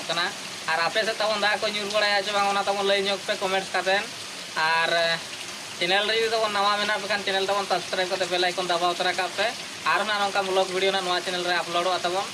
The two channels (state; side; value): identical; both; correlation 1.00